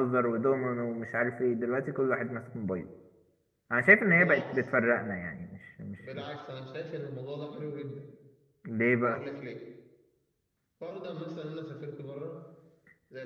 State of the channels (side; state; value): both; identical; correlation 1.00